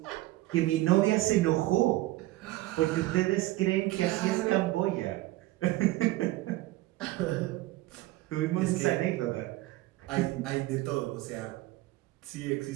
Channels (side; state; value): left; quieter; 17.8 dB